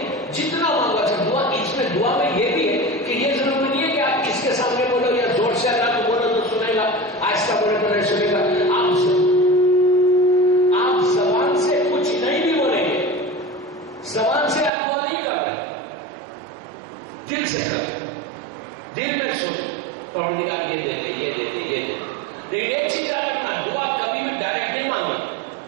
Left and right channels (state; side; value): drops out; left; at 14.7 s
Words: جتنا مانگو. اچھا دعا میں یہ بھی ہے کہ یہ ضروری نہیں ہے کہ آپ کس کے سامنے بولو یا زور سے اللہ کو بولو تو سنے گا، آہستہ بولے تو نہیں سنے گا. آپ زبان سے کچھ نہیں بھی بولیں گے، زبان سے آپ دعا نہیں کر رہے، دل سے کر، دل میں سن پروردگار یہ دیتے یہ دیتے یہ دیتے. لیکن ایک چیز یاد رکھنا، دعا کبھی بھی ڈائریکٹ نہیں مانگنا،